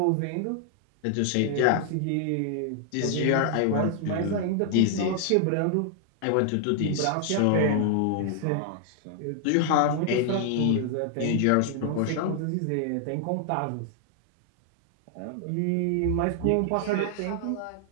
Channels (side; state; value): both; different; correlation 0.00